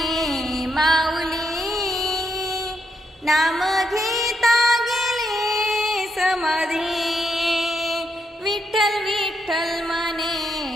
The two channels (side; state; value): both; normal; correlation 0.79